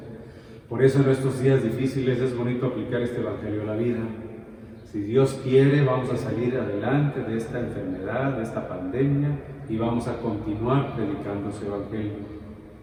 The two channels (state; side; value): identical; both; correlation 1.00